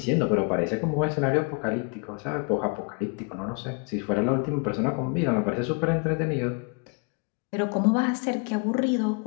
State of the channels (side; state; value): right; quieter; 34.5 dB